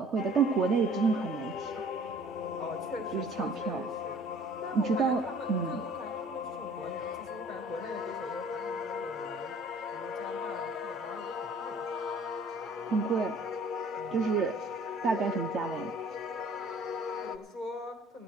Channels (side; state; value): both; normal; correlation 0.52